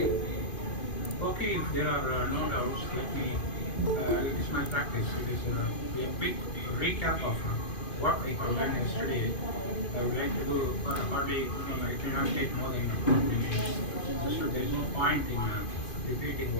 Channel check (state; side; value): late; right; 2.5 ms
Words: Okay, if there are no doubts, let me, it is my practice. It is a quick recap of what we have done yesterday. I would like to do hardly, I cannot take more than 2 minutes. So there is no point in repeating